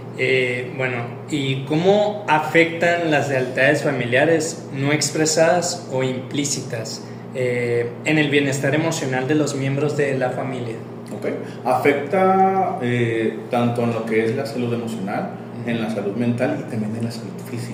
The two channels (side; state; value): both; identical; correlation 1.00